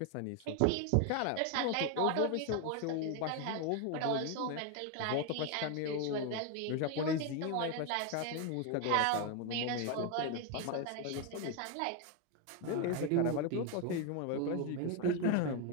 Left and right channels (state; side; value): different; both; correlation 0.01